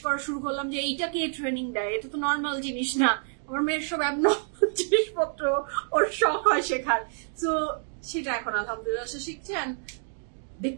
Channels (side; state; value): left; silent; 59 dB below the other